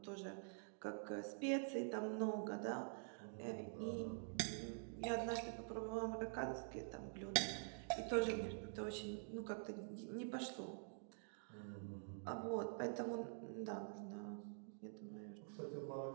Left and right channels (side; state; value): left; silent; digital silence